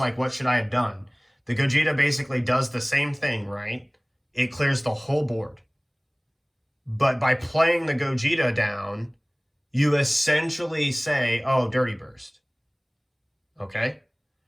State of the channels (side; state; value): both; identical; correlation 1.00